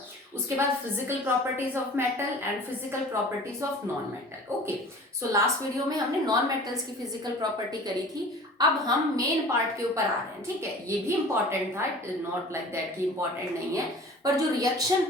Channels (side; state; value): both; normal; correlation 0.43